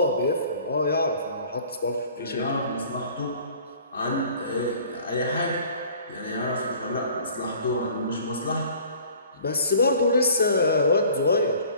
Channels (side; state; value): both; inverted; correlation -0.49